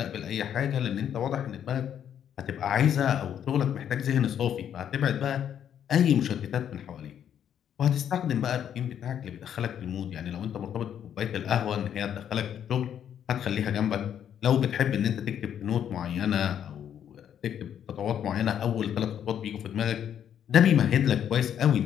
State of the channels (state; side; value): quieter; right; 9.4 dB